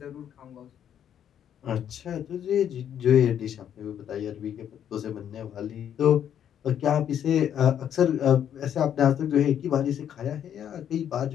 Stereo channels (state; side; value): quieter; right; 9.6 dB